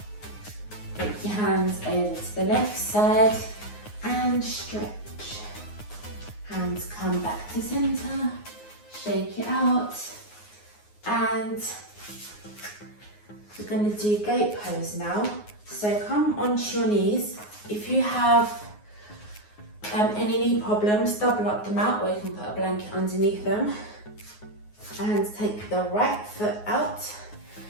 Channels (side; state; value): right; late; 9.5 ms